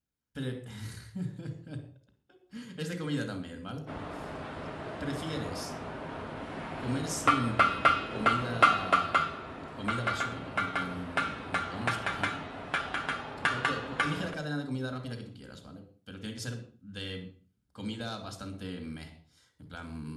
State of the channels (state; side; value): identical; both; correlation 1.00